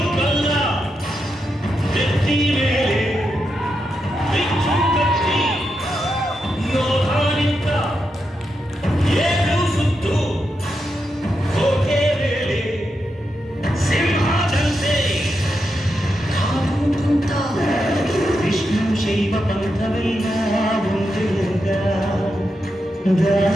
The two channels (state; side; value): normal; both; correlation 0.86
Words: ವಿಷ್ಣು ಶೈವ ಪಂಥವೆಲ್ಲ ಒಂದೆಂದ,